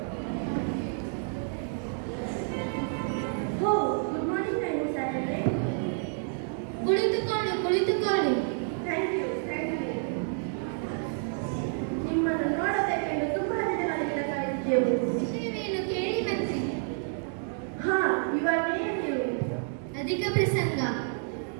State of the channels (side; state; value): left; silent; 58 dB below the other